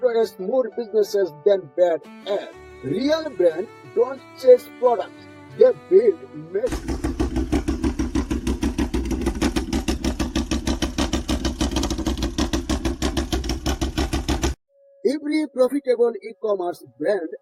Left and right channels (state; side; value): identical; both; correlation 1.00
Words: more businesses than bad ads. Real brands don't chase products, they build magic. Every profitable e-commerce brand